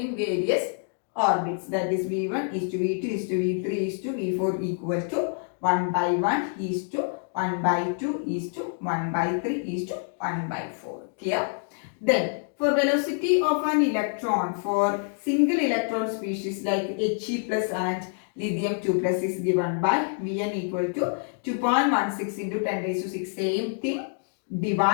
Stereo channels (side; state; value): right; silent; 60 dB below the other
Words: various orbits. That is V1 is to V2 is to V3 is to V4 equal to 1 by 1 is to 1 by 2 is to 1 by 3 is to 1 by 4. Clear? Then for velocity of an electron for single electron species like He plus and lithium 2 plus is given by Vn equal to 2.16 into 10 raised to 6. Same thing